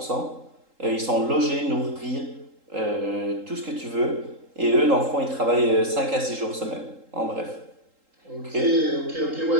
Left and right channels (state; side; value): late; left; 3.8 ms